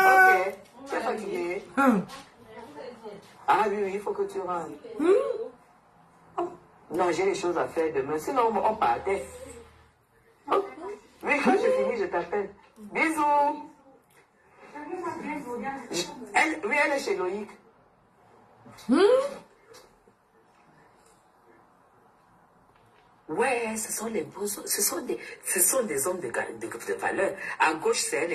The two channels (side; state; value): both; identical; correlation 1.00